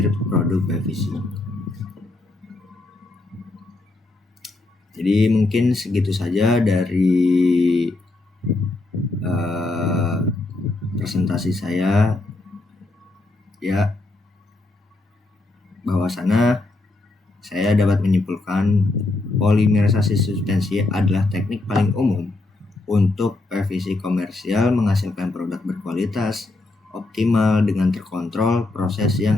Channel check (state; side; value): quieter; right; 3.1 dB